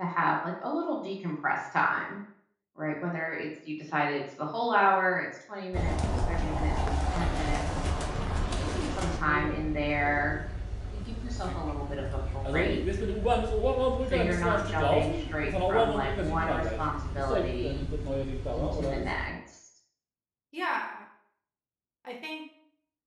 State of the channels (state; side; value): identical; both; correlation 1.00